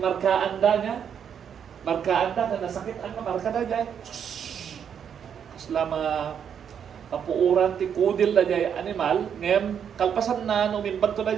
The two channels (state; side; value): quieter; left; 8.0 dB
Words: da nga. Markaan da, kada nasakit ang marka da dyan. Kaslama, kapuuran ti kudil na jay animal, ngem kalpasan na umimbag to na